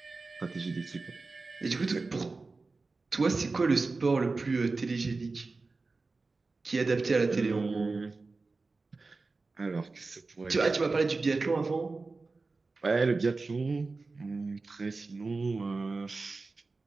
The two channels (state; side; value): quieter; left; 3.8 dB